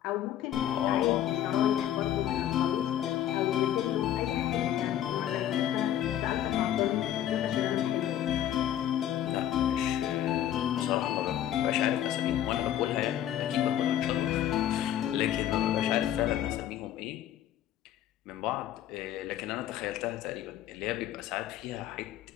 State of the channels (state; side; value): quieter; right; 11.4 dB